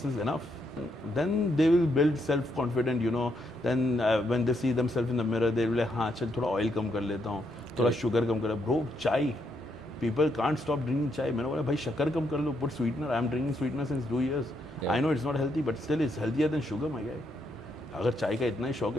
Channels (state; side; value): normal; both; correlation 0.77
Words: is enough. Then they will build self confident, you know. Then when they see themselves in the mirror they will, हाँ चल थोड़ा ऑयल कम कर लेता हूँ, थोड़ा शुगर कम कर. ब्रो, चाय, people can't stop drinking chai. मैंने बोला भाई शक्कर कम कर लो, put sweetener. I am drinking sweetener since 2 years. Yeah. I know it's not healthy, but still it's healthier than sugar, my guy. अगर चाय का इतना ही शौक